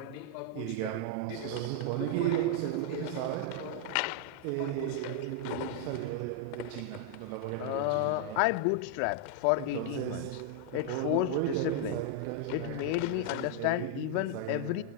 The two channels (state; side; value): different; both; correlation 0.00